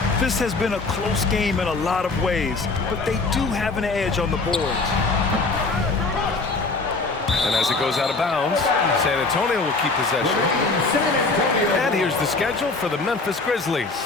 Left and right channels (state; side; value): quieter; right; 3.7 dB